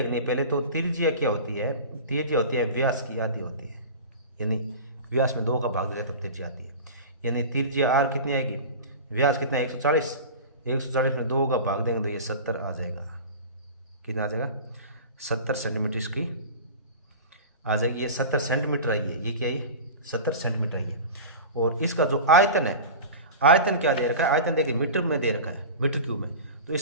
है। पहले तो त्रिज्या क्या होती है, त्रिज्या होती है व्यास की आधी होती है, यानी व्यास में 2 का भाग देते तब त्रिज्या आती है। यानी त्रिज्या r कितनी आएगी, व्यास कितना है 140, 140 में 2 का भाग देंगे तो ये 70 आ जाएगा। कितना आ जाएगा 70 सेंटीमीटर इसकी आ जाएगी। ये 70 सेंटीमीटर आई है, ये क्या है 70 सेंटीमीटर आई है। और इसका जो आयतन है, आयतन क्या दे रखा है, आयतन देखिए मीटर में दे रखा है, मीटर क्यूब में। तो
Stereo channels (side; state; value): both; inverted; correlation -0.32